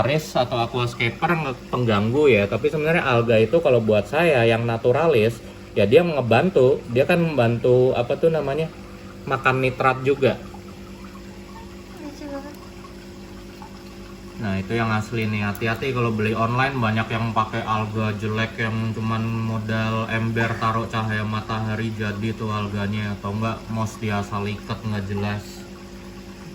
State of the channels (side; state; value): both; identical; correlation 1.00